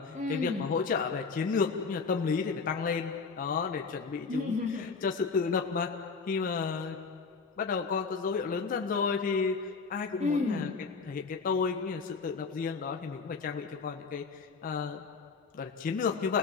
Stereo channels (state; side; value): quieter; right; 4.9 dB